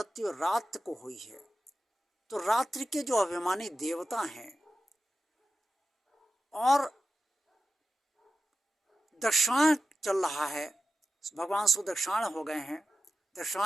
रात को हुई है, तो रात्रि के जो अभिमानी देवता हैं और दक्षिणायन चल रहा है, भगवान सुदक्षिणायन हो गए हैं,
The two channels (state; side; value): normal; both; correlation 0.92